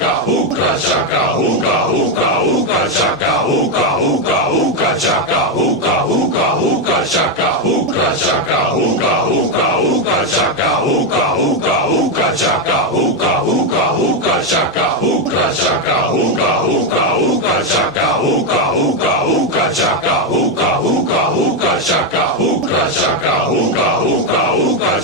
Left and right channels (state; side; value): normal; both; correlation 0.05